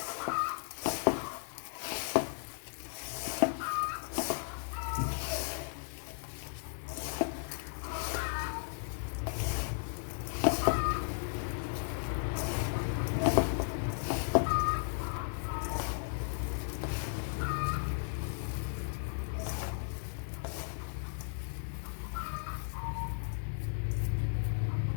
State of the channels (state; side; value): silent; right; digital silence